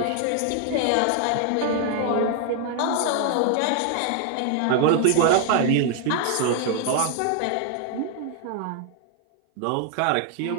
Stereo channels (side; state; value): both; different; correlation 0.00